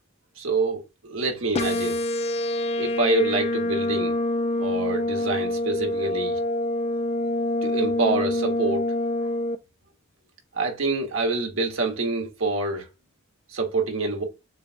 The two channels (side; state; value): both; normal; correlation 0.23